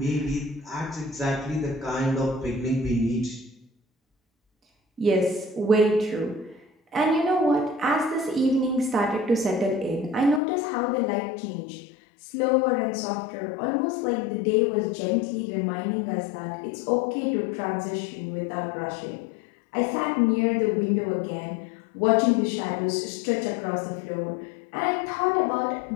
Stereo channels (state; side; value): drops out; right; at 10.4 s